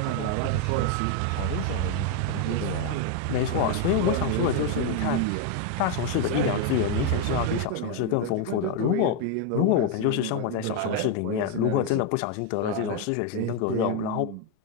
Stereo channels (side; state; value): both; different; correlation 0.01